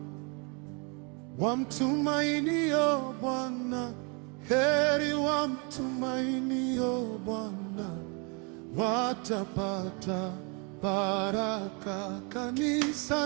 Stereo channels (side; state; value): left; quieter; 33.4 dB